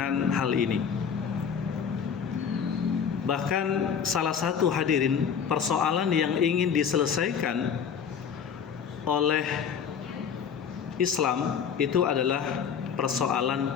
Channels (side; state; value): right; quieter; 7.2 dB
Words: hal ini. Bahkan salah satu hadirin persoalan yang ingin diselesaikan oleh Islam itu adalah persoalan